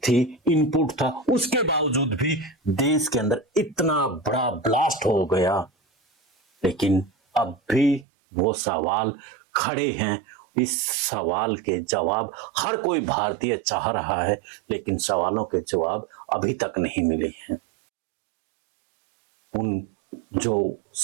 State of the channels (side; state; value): left; drops out; at 8.1 s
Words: इनपुट था, उसके बावजूद भी देश के अंदर इतना बड़ा ब्लास्ट हो गया। लेकिन अब भी वो सवाल खड़े हैं। इस सवाल के जवाब हर कोई भारतीय चाह रहा है, लेकिन सवालों के जवाब अभी तक नहीं मिले हैं। उन जो